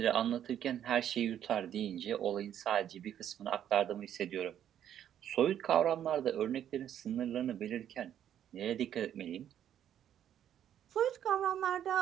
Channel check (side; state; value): left; quieter; 10.2 dB